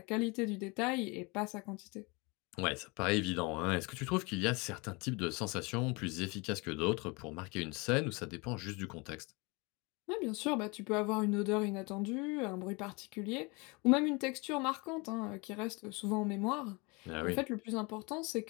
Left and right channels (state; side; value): quieter; right; 28.0 dB